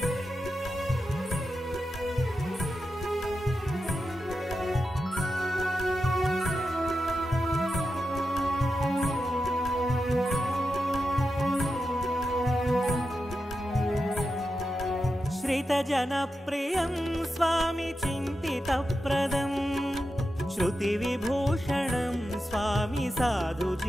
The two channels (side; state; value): both; normal; correlation 0.90